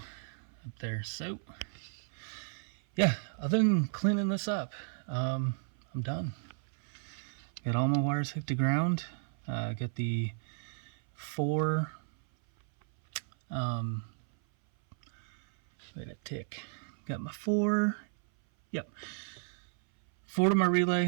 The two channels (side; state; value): left; silent; 55 dB below the other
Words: up there. So yeah, other than cleaning this up, I'm done. Got all my wires hooked to ground. Got the 4 wait a tick. Got my 4. Yep. 4 to my